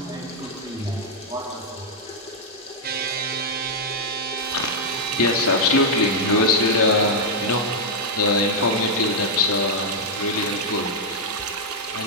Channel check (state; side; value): normal; both; correlation -0.04